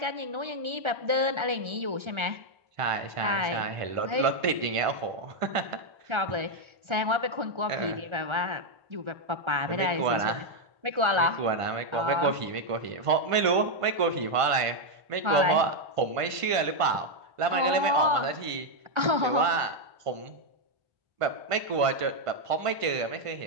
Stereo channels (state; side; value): late; left; 1.5 ms